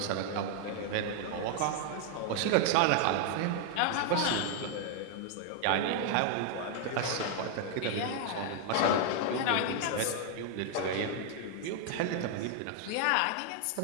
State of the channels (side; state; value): both; different; correlation 0.00